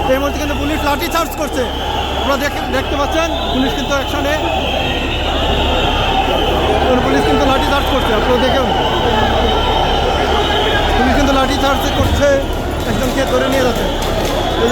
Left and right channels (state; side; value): identical; both; correlation 1.00